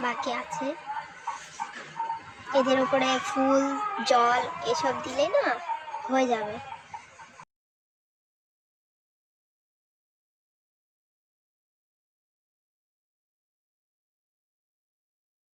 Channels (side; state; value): both; identical; correlation 1.00